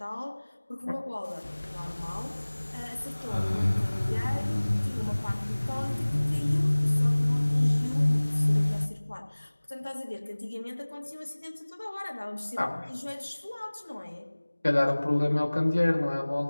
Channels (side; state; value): both; inverted; correlation -1.00